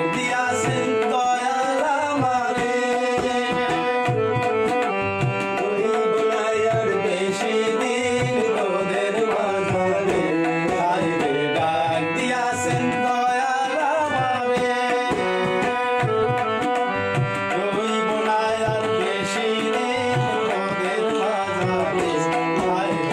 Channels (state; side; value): identical; both; correlation 1.00